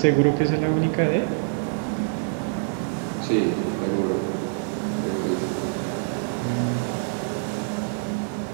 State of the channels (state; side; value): silent; left; digital silence